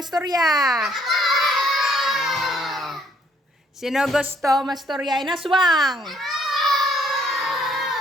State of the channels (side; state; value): both; normal; correlation 0.66